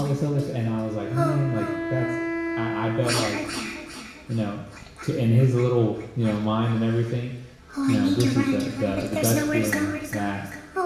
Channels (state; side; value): identical; both; correlation 1.00